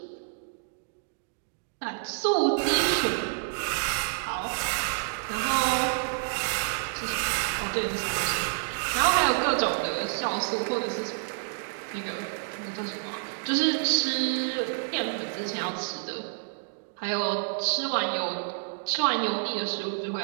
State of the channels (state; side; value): silent; left; digital silence